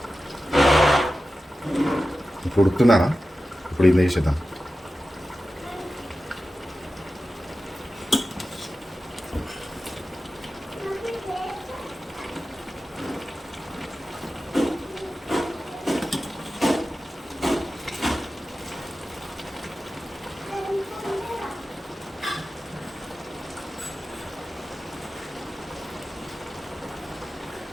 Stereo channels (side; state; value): both; normal; correlation 0.94